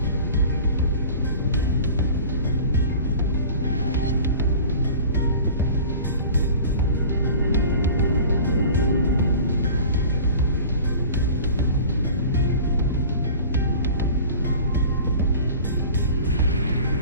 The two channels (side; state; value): both; inverted; correlation -0.41